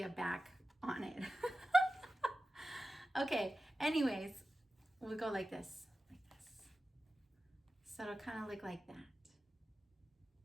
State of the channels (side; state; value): both; normal; correlation 0.94